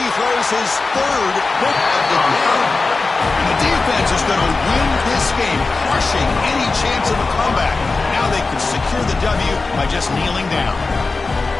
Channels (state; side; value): quieter; right; 3.8 dB